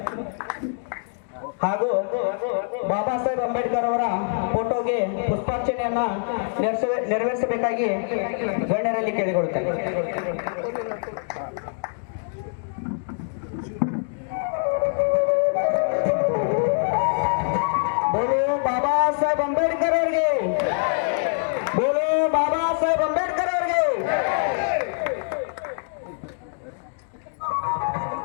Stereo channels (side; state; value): right; silent; digital silence